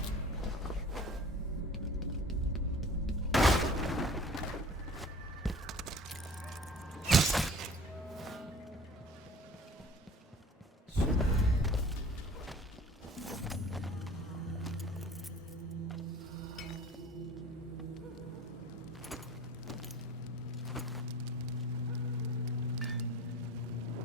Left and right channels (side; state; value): both; normal; correlation 0.45